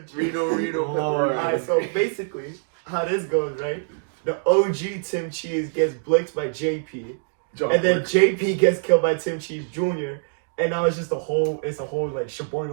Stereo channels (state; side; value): silent; left; digital silence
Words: Cheese. Reno. Alright, so basically, how this goes, right? The OG Tim Cheese gets blitzed by JP, and then JP gets killed by Tim Cheese Jr. And now it's just a whole like